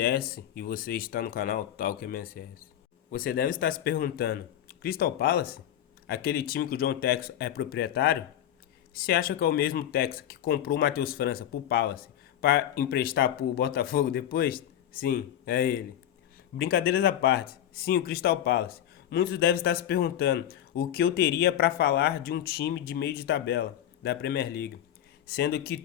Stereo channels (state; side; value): quieter; right; 11.1 dB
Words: e você está no canal Talk MSS. Você deve estar se perguntando, Crystal Palace? Aquele time que o John Textor é proprietário? Você acha que é o mesmo Textor que comprou o Matheus França pro Palace para emprestar pro Botafogo depois? Sim, é ele. Brincadeiras à parte, sim, o Crystal Palace. Muitos devem estar se perguntando o que eu teria para falar de um time de meio de tabela da Premier League, sendo que